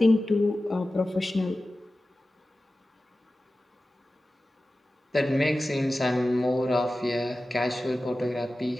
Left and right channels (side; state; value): both; normal; correlation 0.95